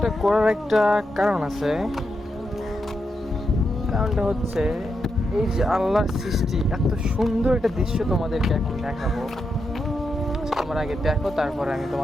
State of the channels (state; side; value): normal; both; correlation 0.85